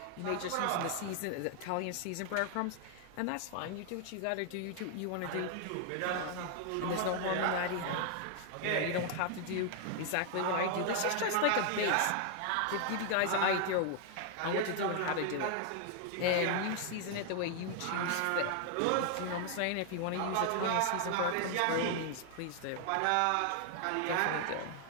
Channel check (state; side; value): different; both; correlation 0.00